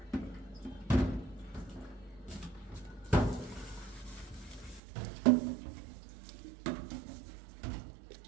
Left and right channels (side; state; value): left; drops out; at 4.8 s